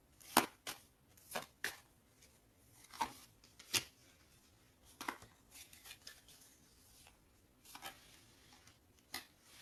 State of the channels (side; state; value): both; identical; correlation 1.00